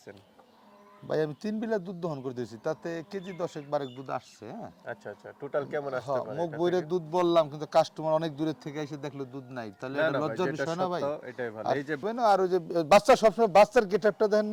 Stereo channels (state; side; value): identical; both; correlation 1.00